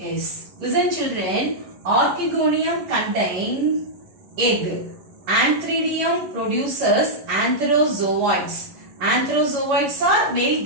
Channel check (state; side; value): late; left; 11 ms